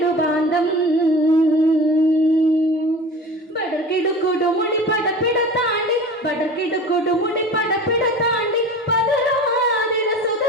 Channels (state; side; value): normal; both; correlation 0.37